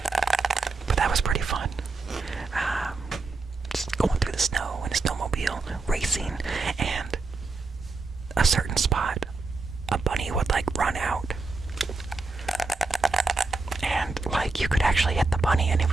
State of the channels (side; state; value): left; quieter; 3.7 dB